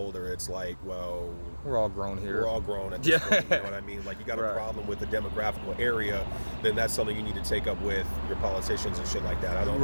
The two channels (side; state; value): both; inverted; correlation -1.00